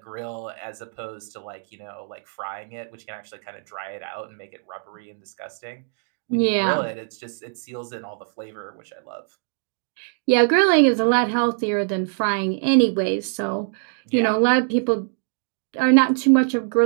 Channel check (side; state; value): left; silent; digital silence